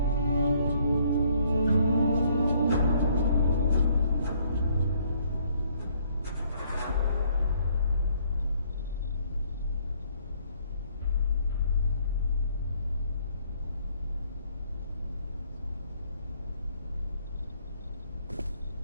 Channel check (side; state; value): both; inverted; correlation -0.65